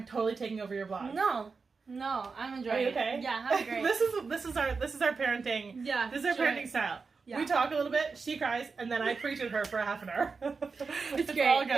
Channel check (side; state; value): left; quieter; 4.7 dB